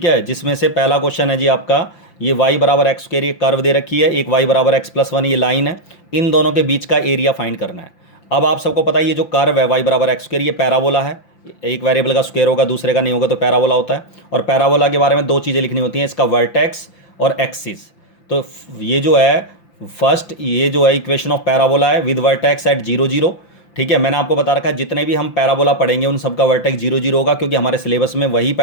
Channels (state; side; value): late; right; 5.9 ms